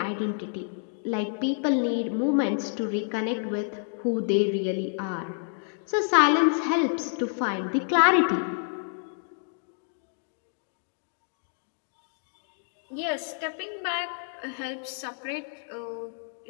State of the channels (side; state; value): right; silent; digital silence